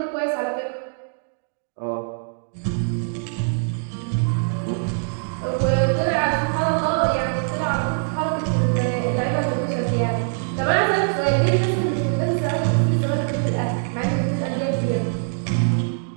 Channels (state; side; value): silent; left; digital silence